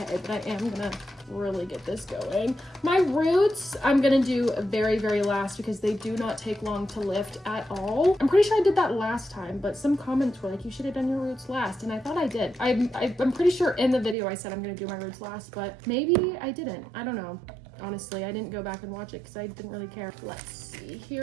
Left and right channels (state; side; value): drops out; left; at 14.2 s